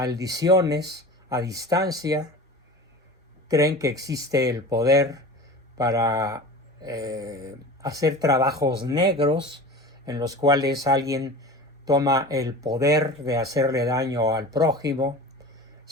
a distancia, creen que existe el poder para hacer trabajos negros en los cuales alguien toma el poder de hacerle daño al prójimo,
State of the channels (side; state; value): both; normal; correlation 0.35